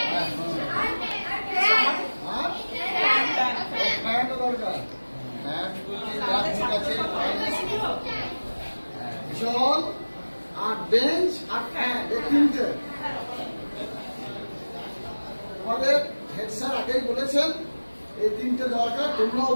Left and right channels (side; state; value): both; inverted; correlation -1.00